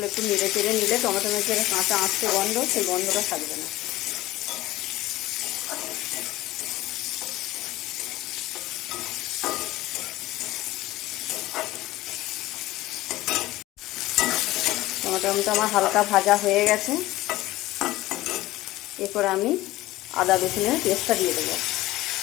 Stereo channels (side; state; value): right; quieter; 17.3 dB